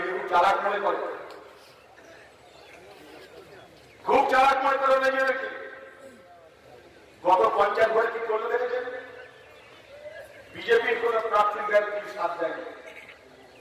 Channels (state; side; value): identical; both; correlation 1.00